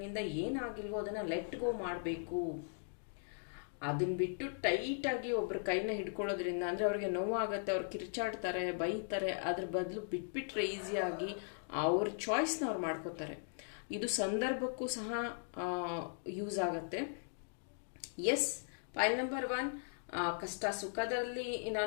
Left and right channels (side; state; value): right; silent; digital silence